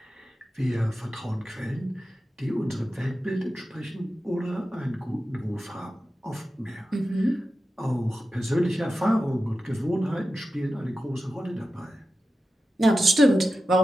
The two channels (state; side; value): normal; both; correlation 0.92